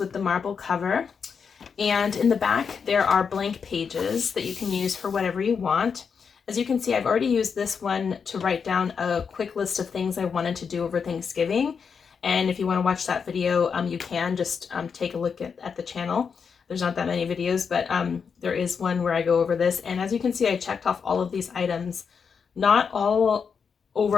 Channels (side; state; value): right; quieter; 6.2 dB